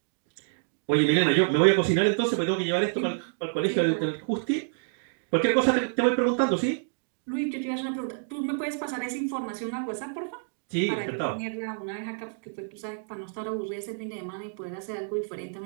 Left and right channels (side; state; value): left; silent; digital silence